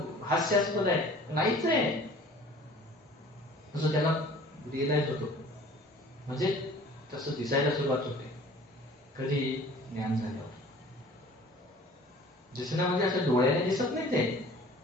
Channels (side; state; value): both; normal; correlation 0.48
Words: हास्यास्पद आहे, नाहीच आहे असं त्याला रिअलाइज होतो. म्हणजे तसं दिसायला सुरुवात होते. कधी? ज्ञान झाल्यावर. दिसणं म्हणजे असं डोळ्याने दिसत नाही, ते